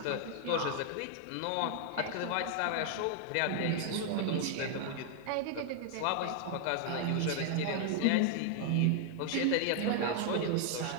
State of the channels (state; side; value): different; both; correlation 0.00